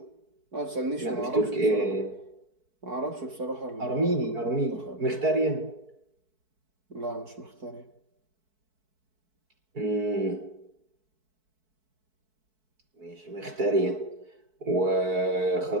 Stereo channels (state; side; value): late; left; 4.6 ms